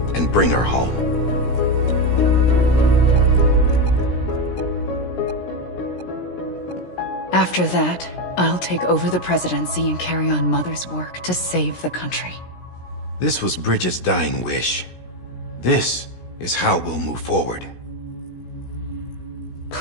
and bring her home. After that, I'll take over the presidency and carry on Mother's work to save the country. This was Bridget's dying wish. This is how we'll move forward.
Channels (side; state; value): right; late; 17 ms